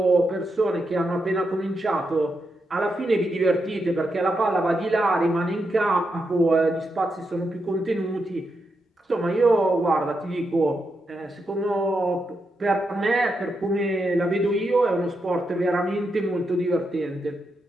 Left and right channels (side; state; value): both; normal; correlation 0.84